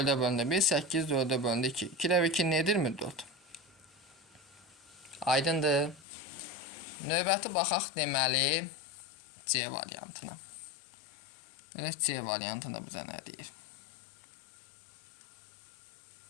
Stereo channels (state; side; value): drops out; right; at 6.1 s